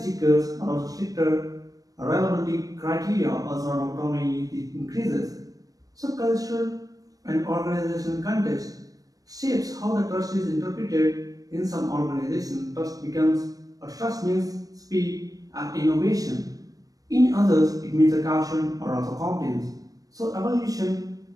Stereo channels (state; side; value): late; left; 0.18 ms